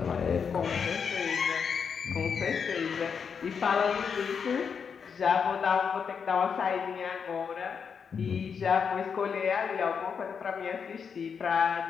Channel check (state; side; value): quieter; right; 6.4 dB